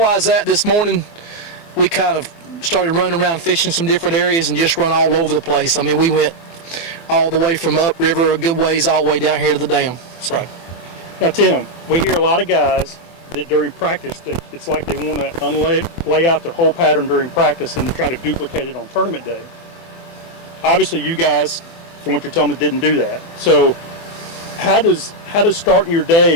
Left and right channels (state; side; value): late; right; 24 ms